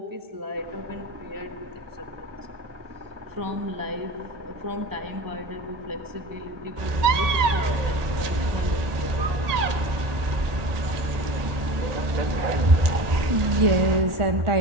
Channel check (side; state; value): left; late; 1.8 ms